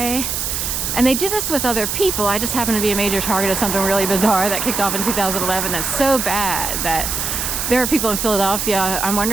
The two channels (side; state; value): right; noise; hiss, 2 dB below the sound